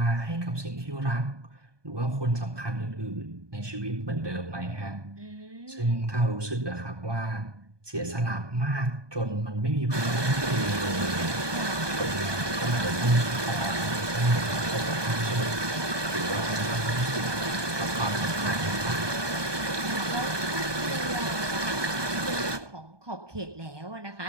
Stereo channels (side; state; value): left; late; 1.2 ms